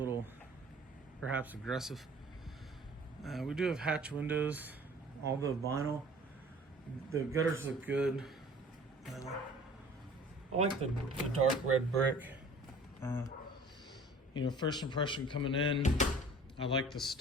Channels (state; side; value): normal; both; correlation 0.48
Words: perhaps aggressive. We do have hatch windows, all the vinyl. The gutters look good. I like the dark red brick. First impression coming in, I like the